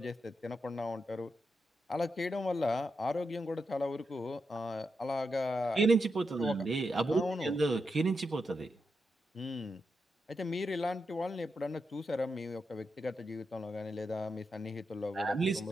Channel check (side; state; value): both; normal; correlation 0.85